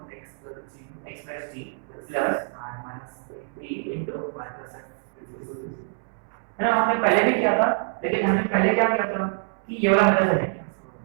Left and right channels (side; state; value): left; silent; 61 dB below the other